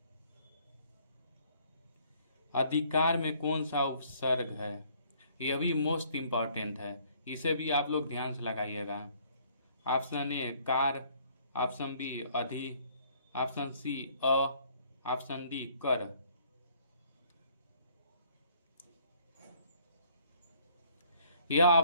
अधिकार में कौन सा उपसर्ग है? यह भी मोस्ट इम्पॉर्टेंट है, इसे भी आप लोग ध्यान से लगाइएगा। ऑप्शन ए कार, ऑप्शन बी अधि, ऑप्शन सी अ, ऑप्शन डी कर। यह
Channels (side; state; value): both; inverted; correlation -0.62